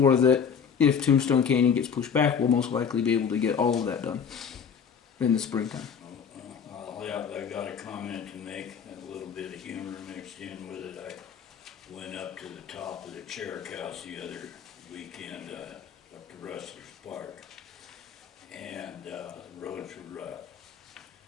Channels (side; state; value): right; quieter; 6.9 dB